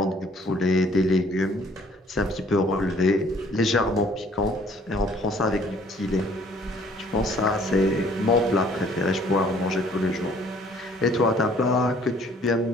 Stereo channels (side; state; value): both; normal; correlation 0.58